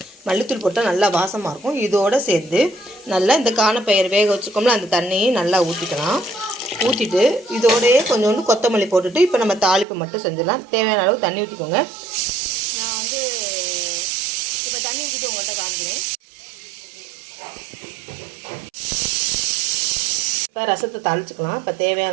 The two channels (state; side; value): drops out; left; at 9.9 s